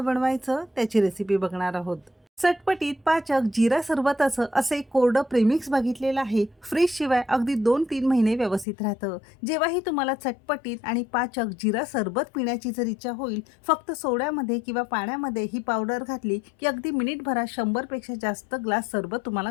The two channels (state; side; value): drops out; right; at 8.7 s